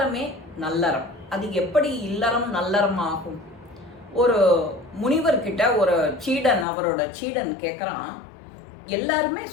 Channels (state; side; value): drops out; right; at 6.7 s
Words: நல்லறம். அது எப்படி இல்லறம் நல்லறம் ஆகும்? ஒரு முனிவர்கிட்ட ஒரு சீடன், அவரோட சீடன் கேட்குறான், எல்லாருமே